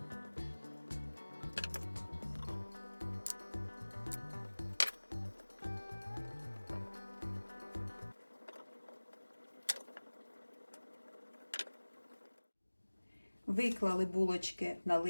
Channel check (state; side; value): inverted; both; correlation -1.00